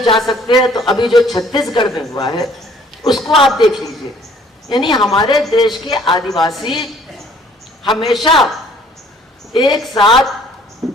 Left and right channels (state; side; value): normal; both; correlation 0.58